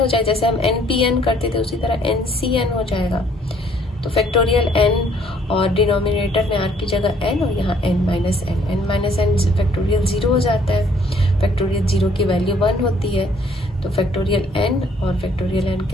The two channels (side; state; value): both; normal; correlation 0.63